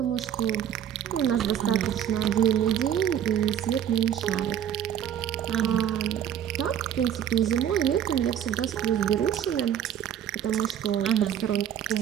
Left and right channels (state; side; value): quieter; left; 9.7 dB